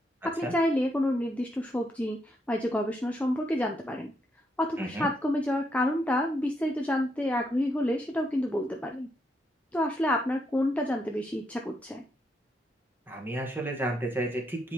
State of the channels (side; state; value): both; normal; correlation 0.78